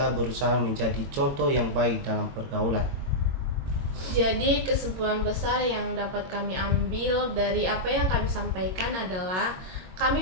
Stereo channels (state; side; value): late; left; 22 ms